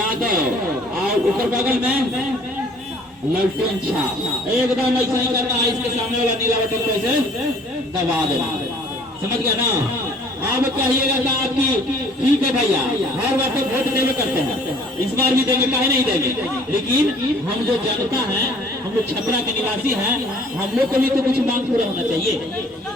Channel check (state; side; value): normal; both; correlation 0.55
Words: और ऊपर बगल में लालटेन छाप। एकदम ऐसा ही करना है। इसके सामने वाला नीला बटन को ऐसे दबा देना। समझ गया ना? अब कहिएगा कि आपकी ठीक है भैया, हर बार तो वोट देवे करते हैं, इस बार भी देंगे, काहे नहीं देंगे। लेकिन हम जो जनता है, हम लोग छपरा के निवासी हैं, हम लोग को भी तो कुछ मांग पूरा होना चाहिए,